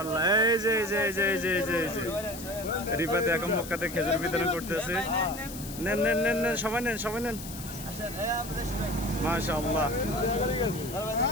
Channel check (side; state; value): left; noise; hiss, 12 dB below the sound